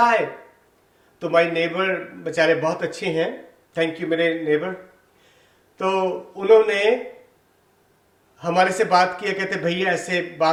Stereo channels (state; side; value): identical; both; correlation 1.00